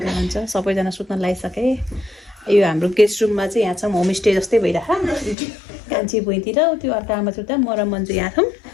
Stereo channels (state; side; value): drops out; right; at 5.4 s